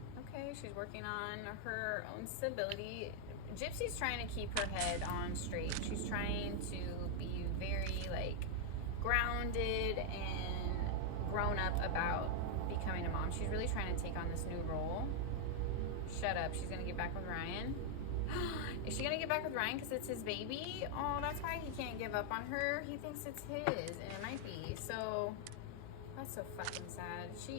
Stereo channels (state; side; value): different; both; correlation 0.00